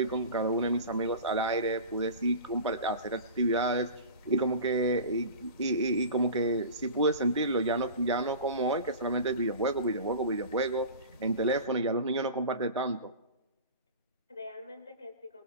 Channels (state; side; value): inverted; both; correlation -0.34